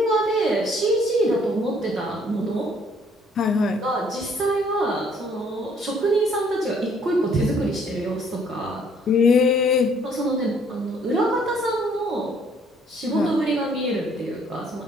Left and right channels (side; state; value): both; normal; correlation 0.62